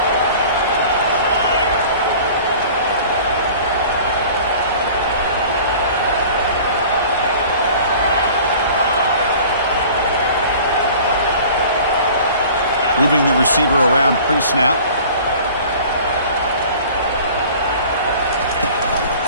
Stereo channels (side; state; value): both; inverted; correlation -0.45